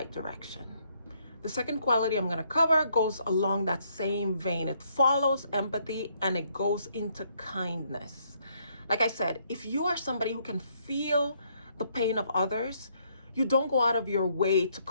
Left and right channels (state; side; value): inverted; both; correlation -0.71